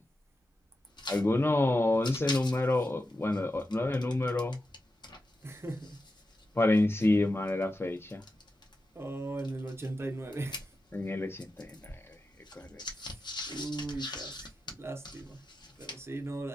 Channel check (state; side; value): normal; both; correlation 0.90